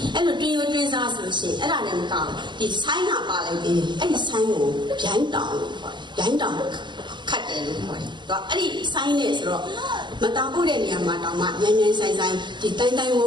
အဲ့လိုတွင်ရိုးတွင်စားဆိုလို့ရှိရင်အဲ့ဒါလည်းမကောင်းဒီဆိုင်းကပါလိုက်သေးတယ်အဲ့ဒီဆိုင်းကိုဗျိုင်းတောင်လို့ခေါ်တယ်ဗျိုင်းတောင်ခတ်တယ်လို့ခေါ်တယ်တော့အဲ့ဒီဆိုင်းနဲ့ဆိုတော့မတောင်ပို့တဲ့နေရာမှာတောင်မှမြန်မြန်ဆိုင်ဆိုင်ဒီတိုင်းတိုင်းဝုန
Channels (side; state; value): left; late; 0.22 ms